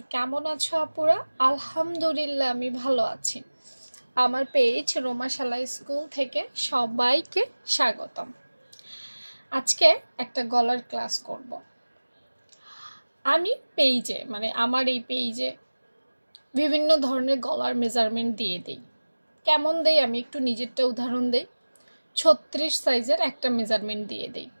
কেমন আছো আপুরা? আলহামদুলিল্লাহ আমি ভালো আছি। আমার পেজ রোমাশালা স্কুল থেকে সবাইকে স্বাগতম। আজকে একটা গলার ক্লাস করব। আমি পেজে আমার এই পেজে বিভিন্ন ধরনের গলার মেজারমেন্ট দিয়ে দিই। কেমন দেই আমি একটু নিজেরটা উদাহরণ দেই। 36 সাইজের একটা মেজারমেন্ট দিয়ে দিই।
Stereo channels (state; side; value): inverted; both; correlation -1.00